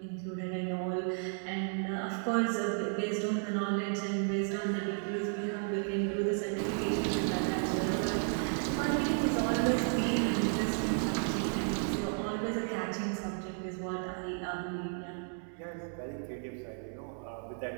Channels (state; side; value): silent; left; 55 dB below the other